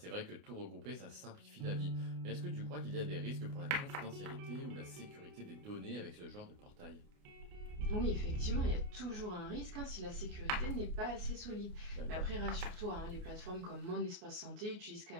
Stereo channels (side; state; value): left; late; 29 ms